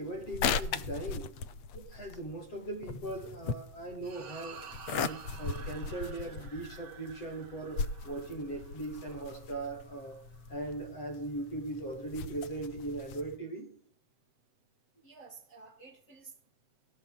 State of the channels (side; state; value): right; late; 7.8 ms